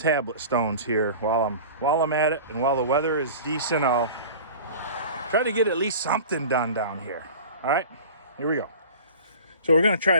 stones here while I'm at it. And while the weather is decent, I'll try to get at least something done down here. All right, here we go. So we're gonna try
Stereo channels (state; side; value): inverted; both; correlation -0.38